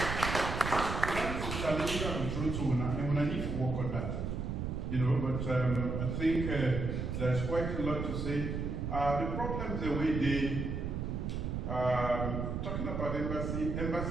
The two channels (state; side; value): noise; right; rumble, 3 dB below the sound